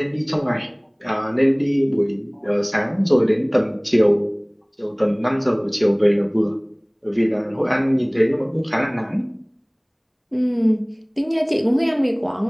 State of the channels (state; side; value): identical; both; correlation 1.00